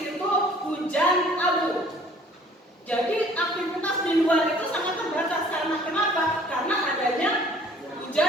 hujan abu. Jadi aktivitas di luar itu sangat terbatas karena kenapa? Karena adanya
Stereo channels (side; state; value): both; normal; correlation 0.54